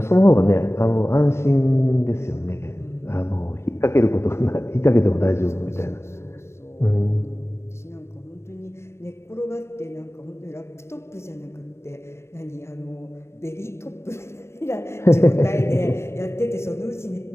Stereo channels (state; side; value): late; right; 0.13 ms